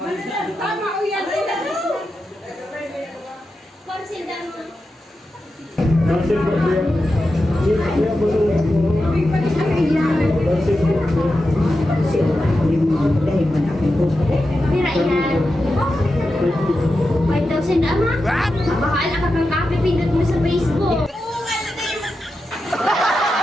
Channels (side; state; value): both; normal; correlation 0.90